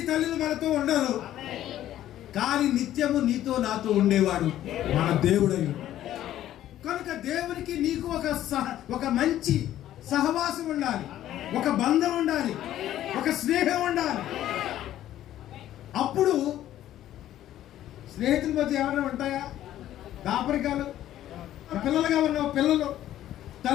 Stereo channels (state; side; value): quieter; right; 12.7 dB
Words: తల్లులు మనతో ఉండరు, కానీ నిత్యము నీతో నాతో ఉండేవాడు మన దేవుడై. కనుక దేవునికి నీకు ఒక మంచి సహవాసం ఉండాలి, ఒక బంధం ఉండాలి, ఒక స్నేహం ఉండాలి. అప్పుడు స్నేహితుల మధ్య ఏమైనా ఉంటాయా దాపరికాలు? పిల్లలుగా ఉన్న పిల్లలు,